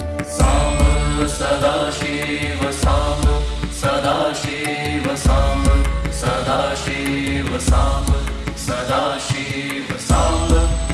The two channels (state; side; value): identical; both; correlation 1.00